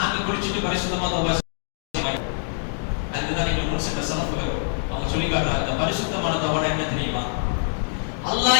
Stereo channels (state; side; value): silent; right; digital silence